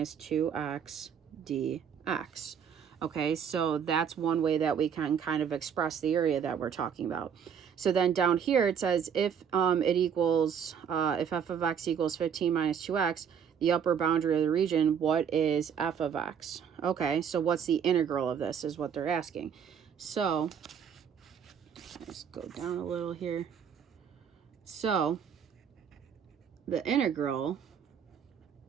2x dx. Okay, so that's one way that we can kind of express the area that we're talking about. So then down here it says if if f of x equals 15 minus 2x, the upper boundary of the region, what is f of x? Okay, so what's the integral of this is what they're asking. So let's go down a little here. So the integral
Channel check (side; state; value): left; quieter; 7.6 dB